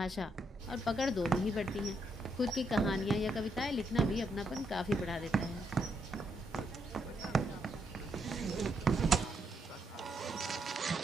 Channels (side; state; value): both; normal; correlation 0.78